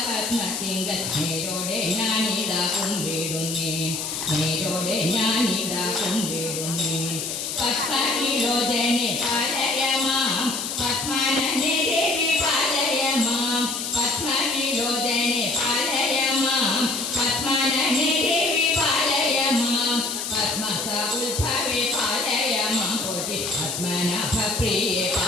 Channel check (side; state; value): left; noise; hiss, 4 dB below the sound